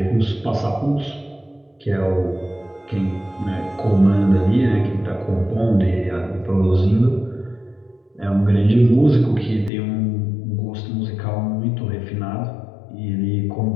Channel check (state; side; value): drops out; right; at 9.7 s